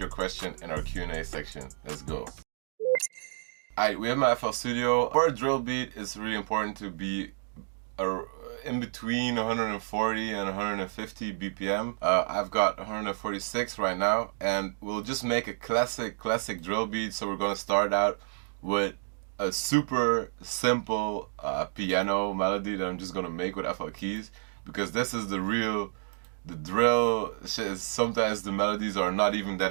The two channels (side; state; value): left; silent; digital silence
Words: question in our Q&A section. Let's go. Alright, we have my FL Studio. For a drill beat, it's really important to be in between 140 and 150 BPM. I've got 146 right now, and we'll just make a classic drill beat. So we're gonna start out with a super simple piano melody that I'm just gonna make with FL keys, because this is the drill shit. Is sometimes the melodies are not even